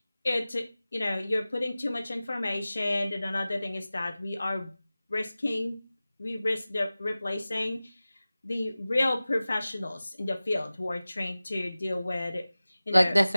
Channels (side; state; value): both; inverted; correlation -0.97